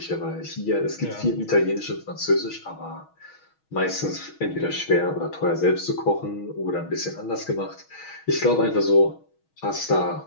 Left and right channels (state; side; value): late; right; 6.3 ms